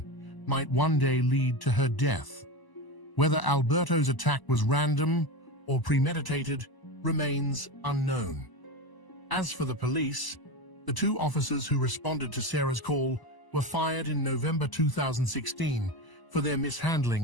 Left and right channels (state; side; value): late; right; 1.0 ms